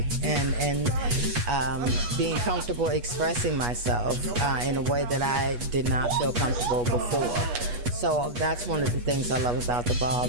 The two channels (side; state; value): left; late; 8.3 ms